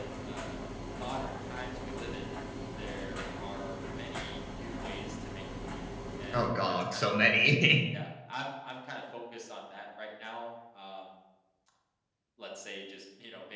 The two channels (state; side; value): identical; both; correlation 1.00